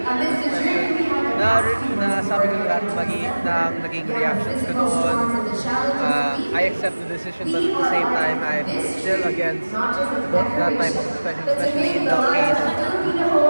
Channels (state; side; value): inverted; both; correlation -1.00